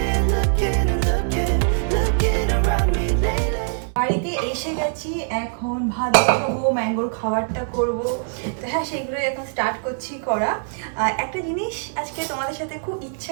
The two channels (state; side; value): silent; left; digital silence